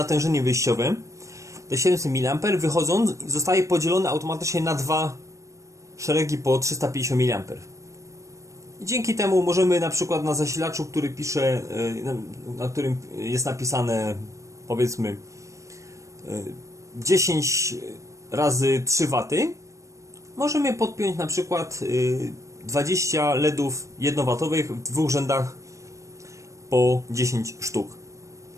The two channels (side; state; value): left; late; 0.15 ms